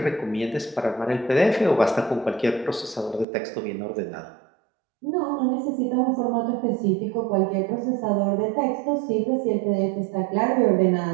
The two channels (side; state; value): left; drops out; at 3.2 s